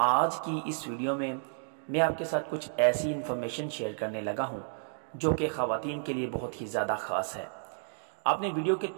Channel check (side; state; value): left; silent; digital silence